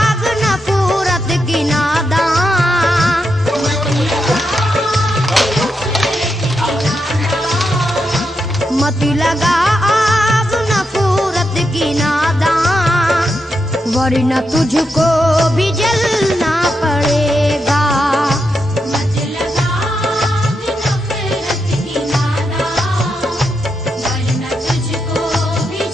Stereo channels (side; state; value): both; normal; correlation 0.84